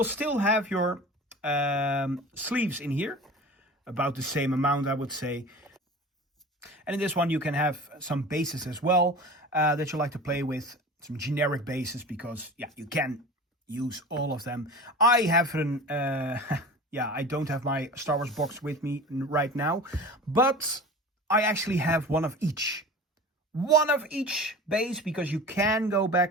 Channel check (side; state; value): both; normal; correlation 0.36